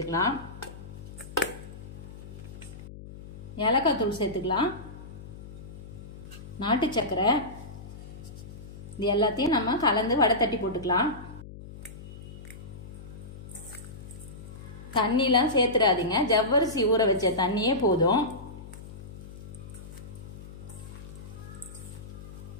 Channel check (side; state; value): left; noise; hum, 14 dB below the sound